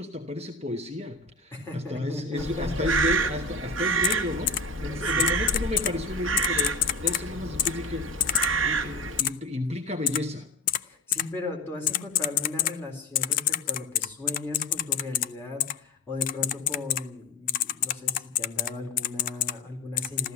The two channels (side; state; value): right; quieter; 3.3 dB